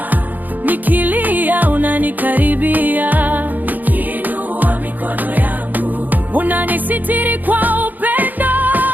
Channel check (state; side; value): late; left; 0.084 ms